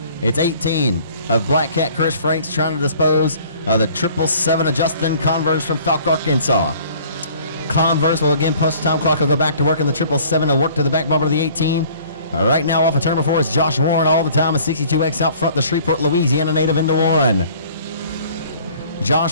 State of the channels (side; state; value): both; inverted; correlation -0.53